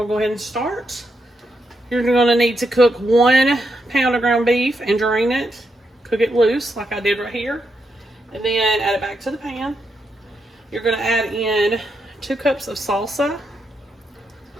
to go ahead and start. You're going to need to cook 1 pound of ground beef and drain it. Cook it loose like I did right here. And then add it back to the pan. You're going to add in 2 cups of salsa.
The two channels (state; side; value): normal; both; correlation 0.82